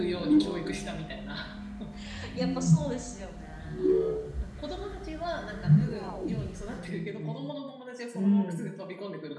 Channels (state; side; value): identical; both; correlation 1.00